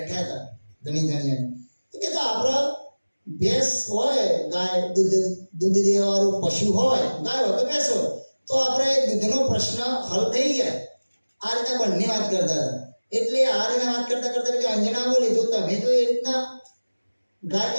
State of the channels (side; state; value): both; inverted; correlation -1.00